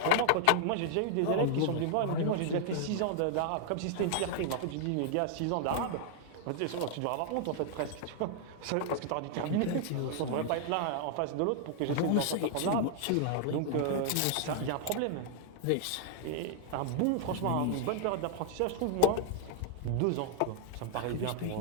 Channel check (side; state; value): both; different; correlation -0.01